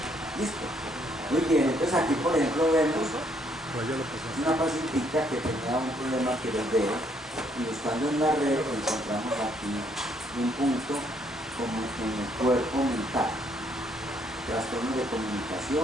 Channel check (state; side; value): normal; both; correlation 0.69